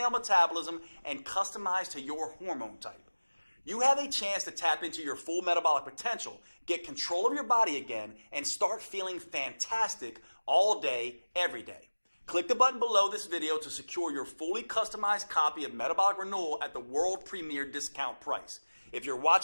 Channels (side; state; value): both; inverted; correlation -1.00